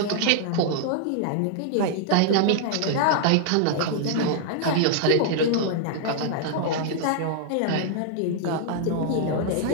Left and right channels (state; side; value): different; both; correlation -0.01